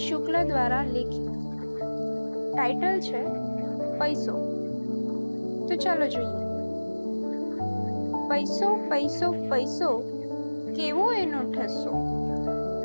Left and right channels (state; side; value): inverted; both; correlation -1.00